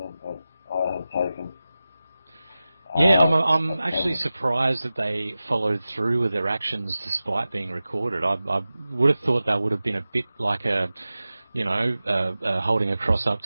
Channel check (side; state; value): both; inverted; correlation -0.95